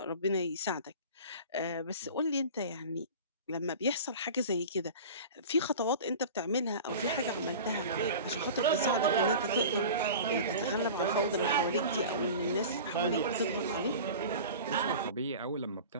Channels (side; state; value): both; inverted; correlation -0.36